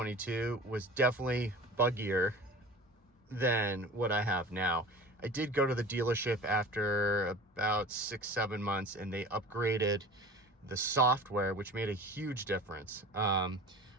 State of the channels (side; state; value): both; normal; correlation 0.39